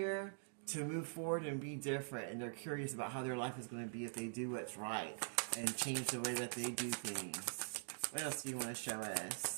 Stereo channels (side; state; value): left; silent; digital silence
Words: to move forward and be different, and they're curious about how their life is going to be if they do what's right and change the way that they do things. What else do you want to show